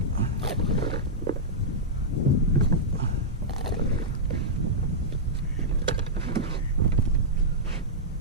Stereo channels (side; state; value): both; normal; correlation -0.09